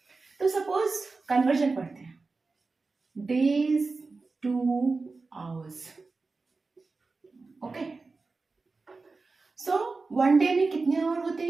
तो सपोज कन्वर्जन पढ़ते हैं. Days two hours. Okay, so one day में कितने आवर होते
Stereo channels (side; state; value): left; quieter; 3.9 dB